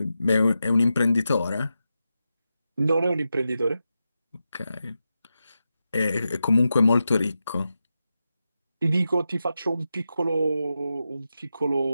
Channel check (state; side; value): inverted; both; correlation -0.89